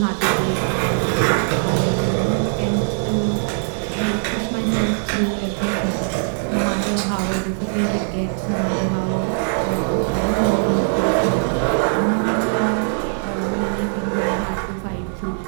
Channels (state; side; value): silent; left; 57 dB below the other